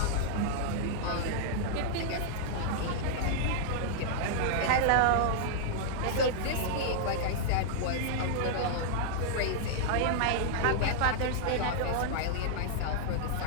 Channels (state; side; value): different; both; correlation -0.01